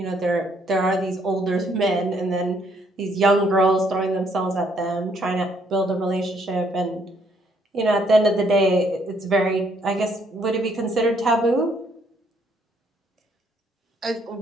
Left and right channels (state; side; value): normal; both; correlation 0.69